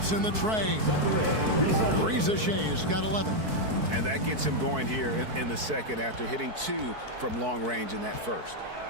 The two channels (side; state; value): left; late; 4.6 ms